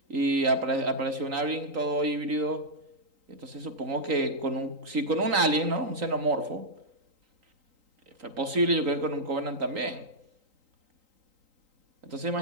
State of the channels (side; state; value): left; late; 3.8 ms